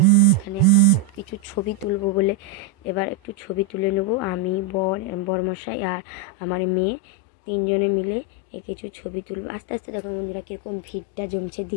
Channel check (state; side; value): drops out; right; at 5.3 s